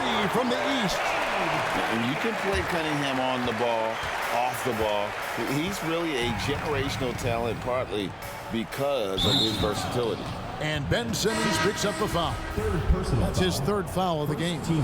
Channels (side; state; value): both; identical; correlation 1.00